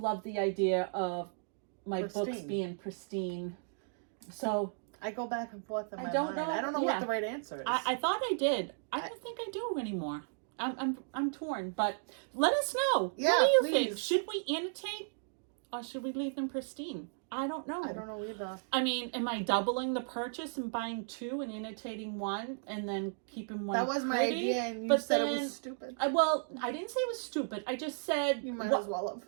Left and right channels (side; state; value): left; silent; digital silence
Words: the idea of my books being pristine. So I go back and forth in my mind. I don't know what the right answer is. I thought I did. I don't think I do anymore. I'm torn. But let us know. Yeah, what do you please. think? Should we annotate, or should we leave them pristine? I don't know. I don't know either. I mean, am I doubling the purchase and buying 2 and annotating 1 and then keeping 1? That was my idea, and you said it was stupid. I didn't say it was stupid. I just said you might as well